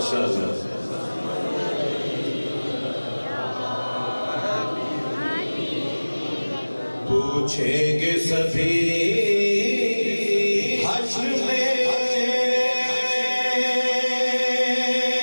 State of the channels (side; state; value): both; inverted; correlation -1.00